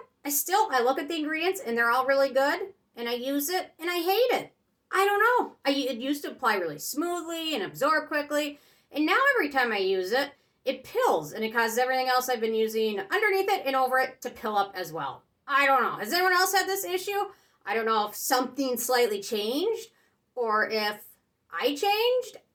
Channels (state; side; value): identical; both; correlation 1.00